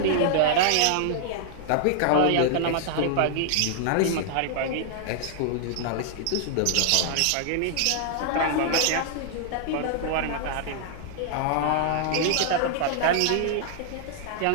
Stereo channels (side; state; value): both; different; correlation -0.01